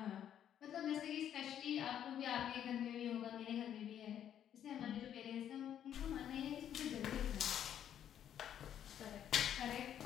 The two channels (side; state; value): right; quieter; 10.0 dB